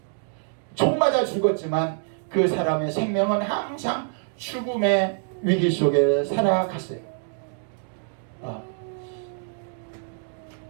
총 맞아 죽었지만 그 사람의 생명은 항상 죽음의 위기 속에 살아갔어요.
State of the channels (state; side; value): silent; left; digital silence